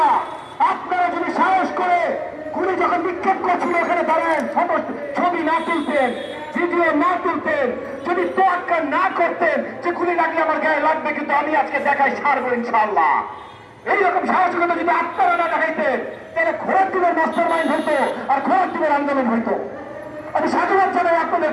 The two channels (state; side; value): identical; both; correlation 1.00